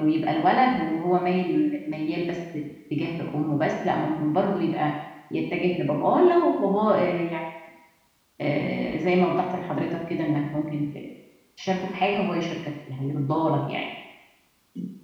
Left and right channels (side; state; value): both; identical; correlation 1.00